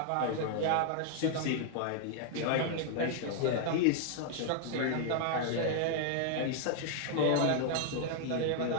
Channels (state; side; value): different; both; correlation 0.00